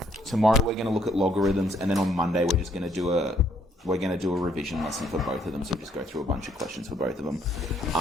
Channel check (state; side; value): normal; both; correlation 0.68